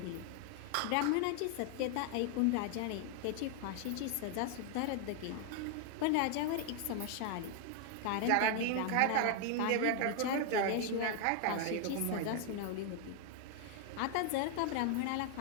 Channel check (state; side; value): different; both; correlation 0.00